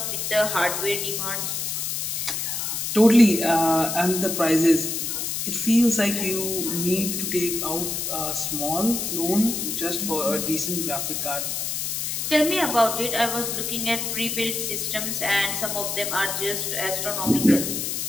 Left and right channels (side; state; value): left; noise; hiss, 2 dB below the sound